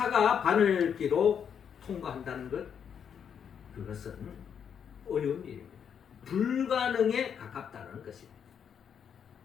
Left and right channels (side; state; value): right; quieter; 7.8 dB